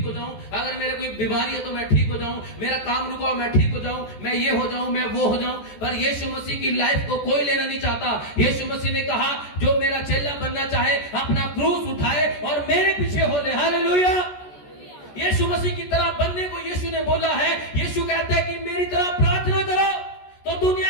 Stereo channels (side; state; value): right; late; 14 ms